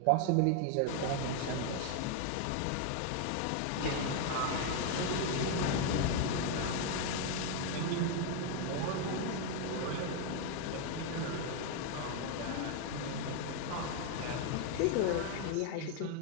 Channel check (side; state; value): both; different; correlation 0.01